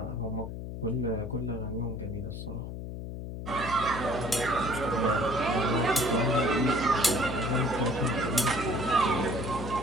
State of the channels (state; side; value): noise; left; hum, 7 dB below the sound